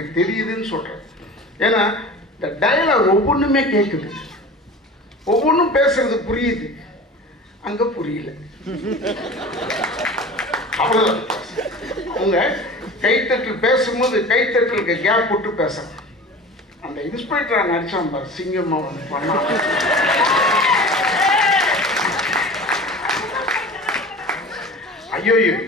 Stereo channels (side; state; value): both; normal; correlation 0.37